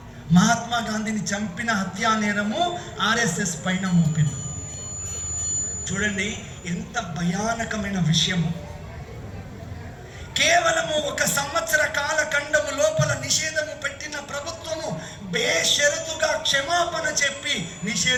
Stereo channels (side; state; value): both; identical; correlation 1.00